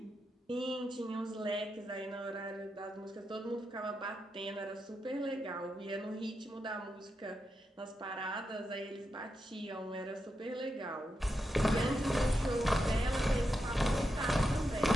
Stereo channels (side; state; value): both; normal; correlation 0.86